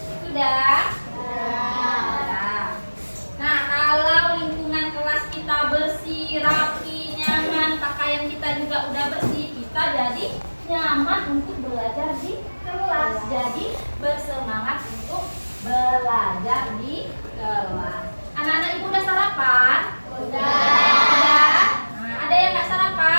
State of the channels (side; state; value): both; inverted; correlation -1.00